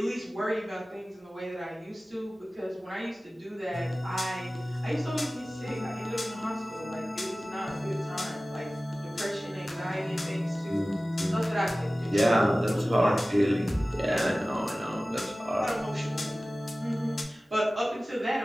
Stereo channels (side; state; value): both; normal; correlation 0.97